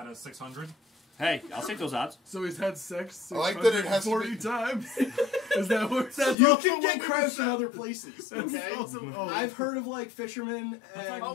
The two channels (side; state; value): right; drops out; at 6.4 s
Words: of 600? Hey, I'll take those odds. So he's had sex I like that it has 40 times. Is that what You can get crabs from other places, That's okay? awesome. Oh, I've heard of, like, fishermen That's and...